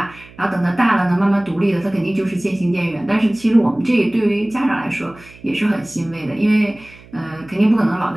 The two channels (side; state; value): right; noise; hum, 23 dB below the sound